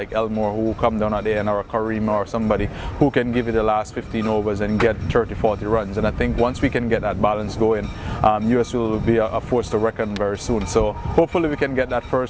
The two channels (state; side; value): identical; both; correlation 1.00